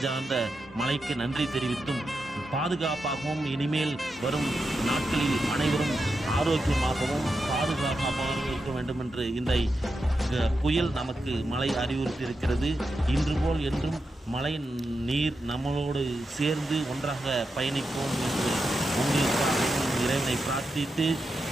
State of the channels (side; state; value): both; normal; correlation 0.88